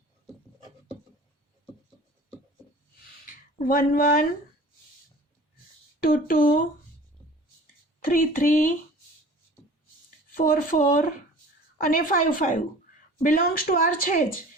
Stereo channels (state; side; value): normal; both; correlation 0.44